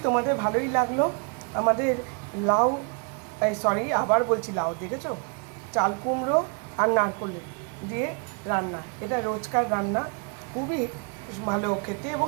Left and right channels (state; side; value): quieter; left; 37.3 dB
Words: তোমাদের ভালোই লাগলো আমাদের লাউ, সরি আবার বলছি লাউ, দেখেছো, চাল কুমড়ো আর নারকেল দিয়ে রান্না। এটা রোজকার রান্না, খুবই ভালো খেতে এবং